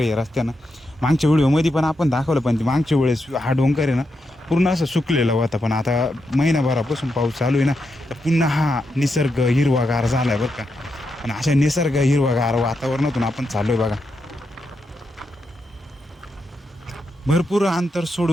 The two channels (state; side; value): normal; both; correlation 0.84